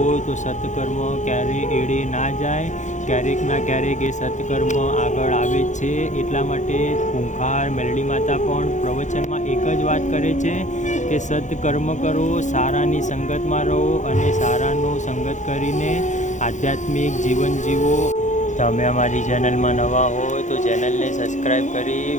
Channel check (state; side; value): late; right; 0.35 ms